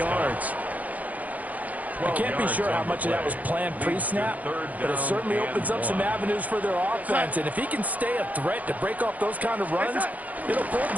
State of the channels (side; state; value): left; late; 0.077 ms